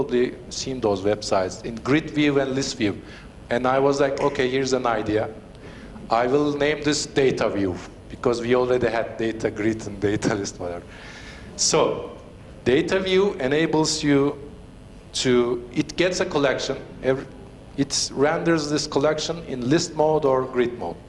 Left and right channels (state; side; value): identical; both; correlation 1.00